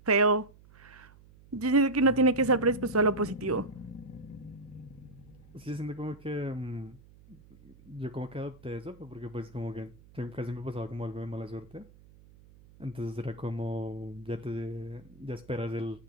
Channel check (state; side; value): noise; right; hum, 24 dB below the sound